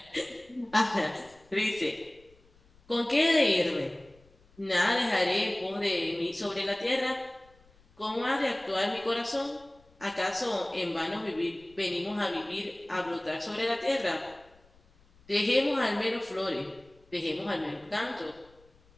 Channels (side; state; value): left; noise; rumble, 29 dB below the sound